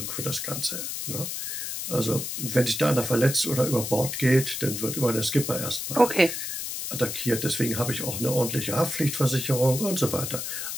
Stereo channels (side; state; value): left; noise; hiss, 4 dB below the sound